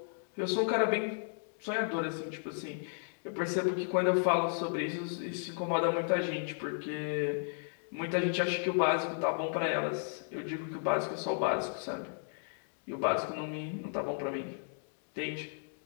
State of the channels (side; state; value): right; silent; digital silence